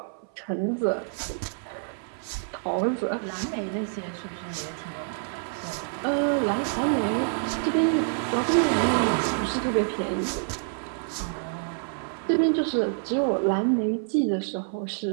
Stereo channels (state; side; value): silent; left; 58 dB below the other